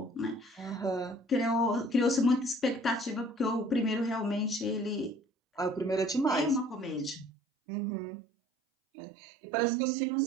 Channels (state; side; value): drops out; left; at 7.3 s